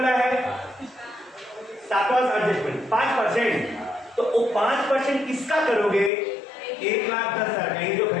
है? सातवां एडजस्टमेंट 5%। तो वो 5% किसका करोगे? 1,10,000 का। ये जो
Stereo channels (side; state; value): right; drops out; at 6.1 s